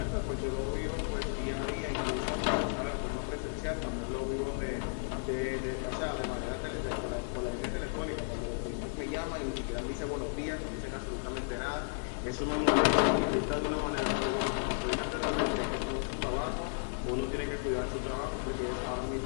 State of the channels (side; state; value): right; silent; digital silence